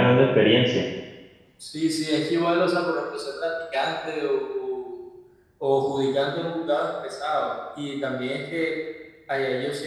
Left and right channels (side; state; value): both; identical; correlation 1.00